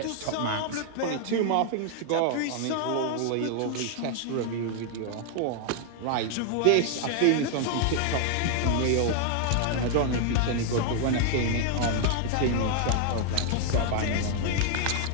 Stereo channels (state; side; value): different; both; correlation 0.00